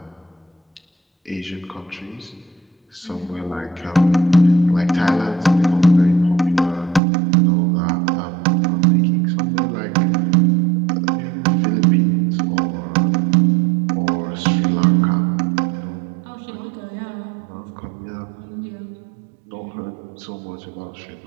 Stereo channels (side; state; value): left; drops out; at 7.0 s